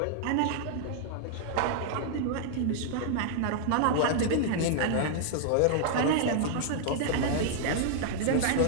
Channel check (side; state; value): both; different; correlation -0.01